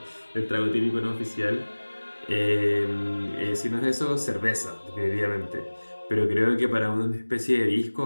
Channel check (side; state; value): both; inverted; correlation -1.00